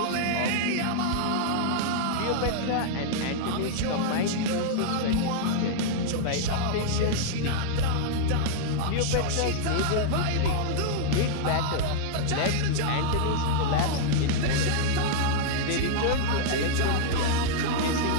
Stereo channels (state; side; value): different; both; correlation -0.02